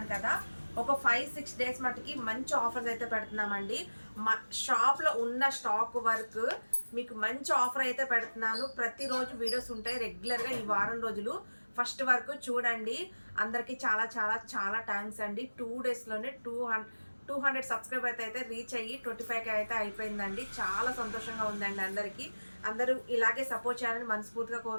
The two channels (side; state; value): both; inverted; correlation -1.00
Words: కదా. ఒక 5-6 డేస్ మటుకి మంచి ఆఫర్స్ అయితే పెడుతున్నామండి. మా షాప్లో ఉన్న స్టాక్ వరకు మీకు మంచి ఆఫర్ అయితే పెడుతున్నాను. ప్రతిరోజు వీడియోస్ ఉంటాయి రెగ్యులర్గా. ఈ వారం రోజులు ఫస్ట్ వరకు చూడండి. అందరికీ చాలా చాలా చాలా థ్యాంక్స్ అండి. 2 డేస్లోనే 200 సబ్స్క్రైబర్స్ అయితే రీచ్ అయ్యి 25K అయితే అయిపోయిందండి. చాలా సంతోషంగా ఉందండి. అందరూ ఇలాగే సపోర్ట్ చేయాలని మనస్ఫూర్తిగా